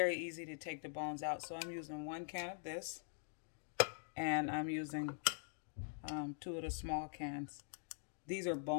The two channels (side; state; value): right; silent; digital silence